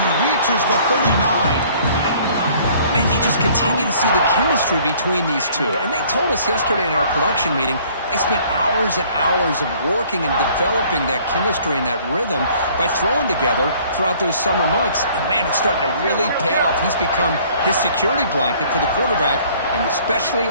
reaches the 39. Man, you just continue to see the chemistry between these two. And they told us yesterday in our production meeting, they spent hours and hours of working and developing that chemistry and that rhythm by throwing together throughout those summer months. And man, it's starting to really pay off. He's become his security blanket for the quarterback, and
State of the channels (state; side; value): inverted; both; correlation -0.56